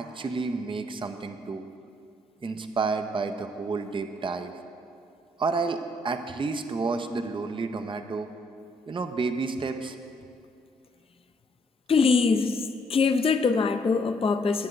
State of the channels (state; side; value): normal; both; correlation 0.69